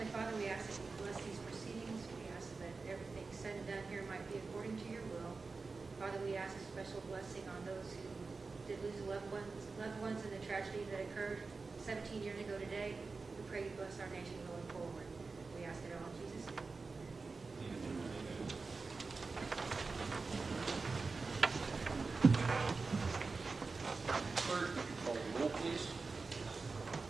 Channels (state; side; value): quieter; left; 4.1 dB